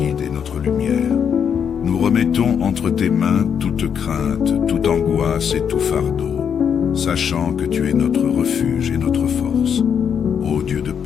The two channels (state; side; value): quieter; right; 7.6 dB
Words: et notre lumière. Nous remettons entre tes mains toute crainte, toute angoisse et tout fardeau, sachant que tu es notre refuge et notre force. Ô Dieu de